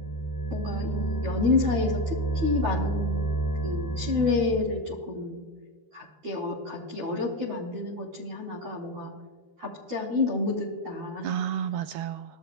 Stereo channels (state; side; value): late; left; 13 ms